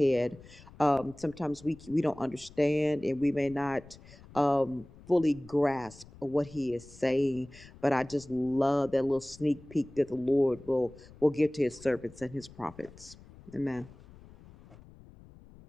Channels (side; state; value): left; noise; rumble, 21 dB below the sound